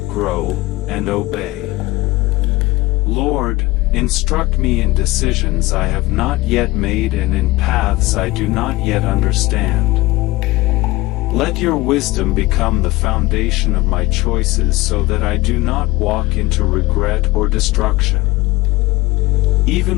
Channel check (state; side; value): quieter; right; 20.2 dB